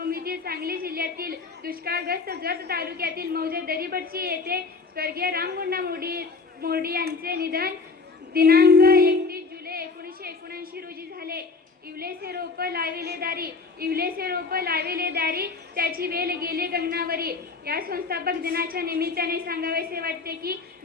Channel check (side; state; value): right; quieter; 4.3 dB